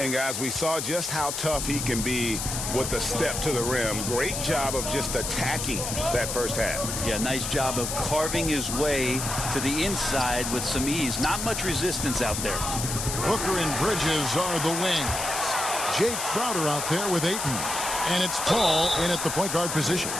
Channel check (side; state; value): left; noise; hiss, 3 dB below the sound